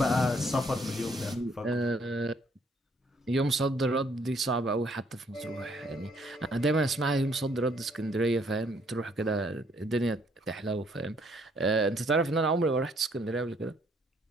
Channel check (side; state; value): both; normal; correlation 0.66